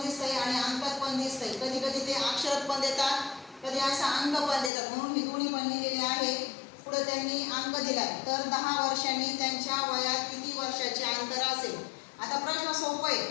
दिसतंय आणि अंकात पण दिसतंय. कधी कधी ते अक्षरात पण देतात, कधी असा अंक पण देतात, म्हणून मी दोन्ही पण लिहिलेले आहे. पुढे त्यांनी अंक दिलाय. तर 10 वर्षांनी त्यांच्या वयात किती वर्षाचे अंतर असेल? आता प्रश्न सोपा आहे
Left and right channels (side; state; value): right; drops out; at 4.7 s